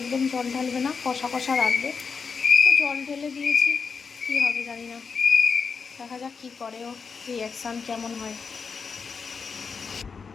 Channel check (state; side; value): quieter; right; 5.5 dB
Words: জল ঢালবে না, কষা কষা রাখবে। তো জল ঢেলে দিয়েছি, কী হবে জানি না, দেখা যাক কী করে ও, রিয়াকশান কেমন হয়।